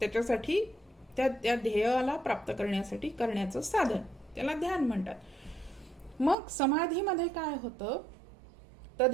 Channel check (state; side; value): drops out; left; at 6.4 s